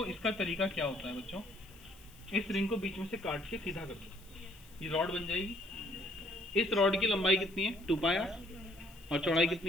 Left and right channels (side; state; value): left; noise; hiss, 24 dB below the sound